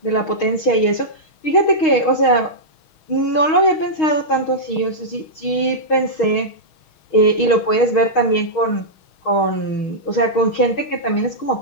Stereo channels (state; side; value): late; right; 6.4 ms